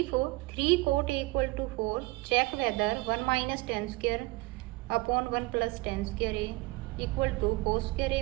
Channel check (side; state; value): left; quieter; 22.8 dB